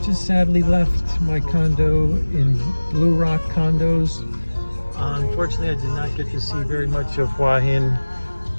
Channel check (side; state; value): both; inverted; correlation -1.00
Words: Just sadly left my condo in Blue Rock Condos. Unfortunately, I did not get to see very much of Hua Hin